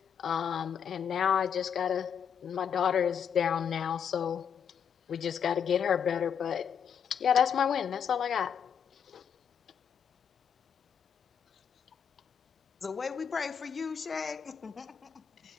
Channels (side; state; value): right; quieter; 7.7 dB